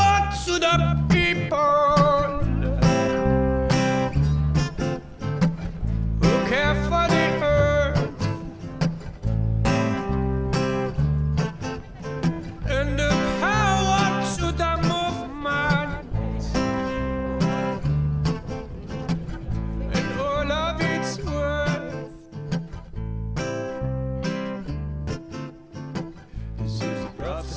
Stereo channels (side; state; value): both; identical; correlation 1.00